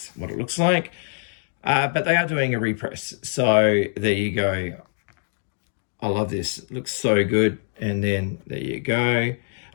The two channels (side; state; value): right; silent; digital silence